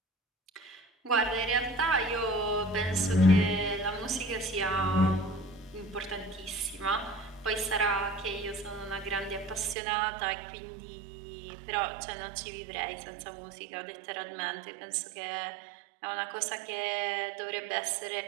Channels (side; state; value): left; drops out; at 9.8 s